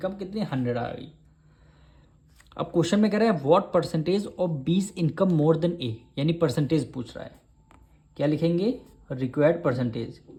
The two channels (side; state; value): both; identical; correlation 1.00